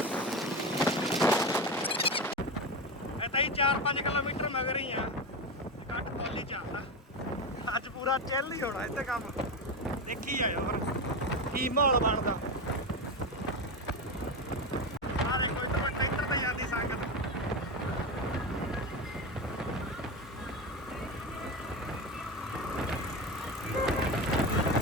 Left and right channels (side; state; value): both; normal; correlation 0.18